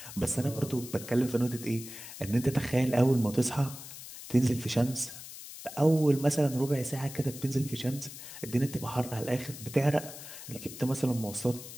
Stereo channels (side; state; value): left; noise; hiss, 13 dB below the sound